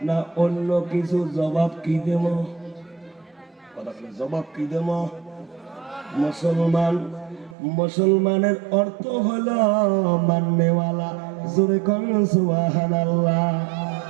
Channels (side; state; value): left; drops out; at 7.6 s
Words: না অন্য কিছু, জবাব কি দেব? জবাব কি দেব? মুসলমান। মুসলমানের অর্থ হলো মাননেওয়ালা। জোরে কোন সুবহানাল্লাহ।